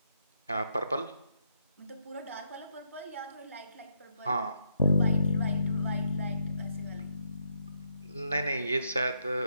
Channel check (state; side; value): inverted; both; correlation -0.77